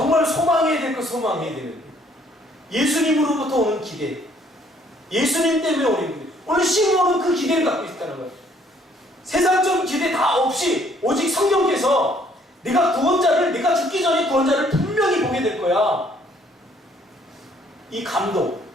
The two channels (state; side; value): normal; both; correlation 0.63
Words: 소망해야 될 거 소망해야 되는 거예요. 예수님으로부터 오는 기대, 예수님 때문에 오는 기대. 오늘 시므온은 그 기대를 갖고 있다는 거예요. 세상적인 기대 다 없이 오직 성령께서 내가 죽기 전에 구원자를 분명히 보게 될 거야. 이 감동,